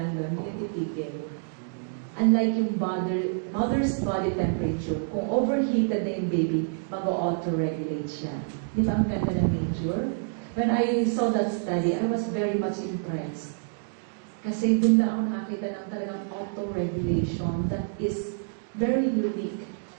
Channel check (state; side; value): silent; left; digital silence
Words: doon, hindi titigil. Unlike yung mother's body temperature, kung overheated na yung baby, mag-auto-regulate siya. Di ba ang ganda ng nature? When I saw that study, I was very much impressed. Kasi doon na ako nakakita ng talagang auto-regulation that is very unique.